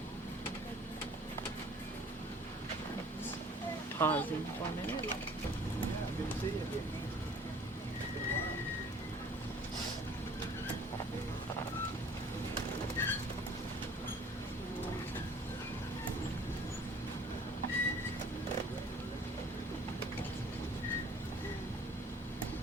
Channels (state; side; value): normal; both; correlation 0.51